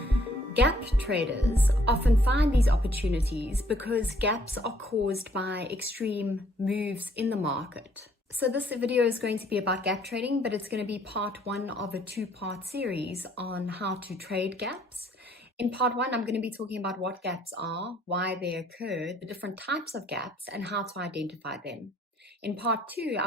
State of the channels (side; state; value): both; normal; correlation 0.64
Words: Gap traders often find these opportunities because gaps are caused by extreme moves in the market. So this video is going to be about gap trading, but it's going to be part one of a two-part series on how to trade gaps. In part one, I'm going to be talking about what gaps are, why they occur, the different types of gaps, and how to identify them. In part two,